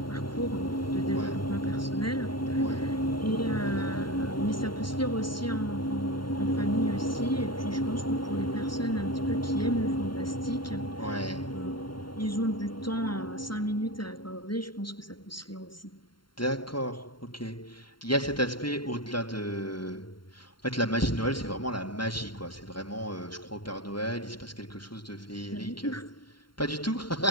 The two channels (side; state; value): right; late; 0.72 ms